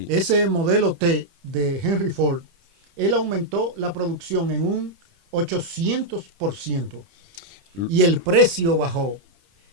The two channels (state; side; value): late; left; 30 ms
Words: Ese modelo T de Henry Ford, él aumentó la producción en un 800%. Y el precio bajó